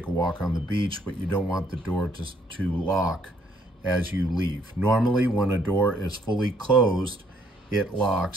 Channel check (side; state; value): both; normal; correlation 0.67